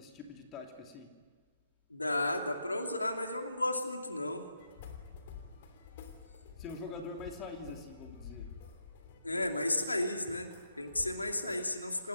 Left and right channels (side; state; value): both; inverted; correlation -0.82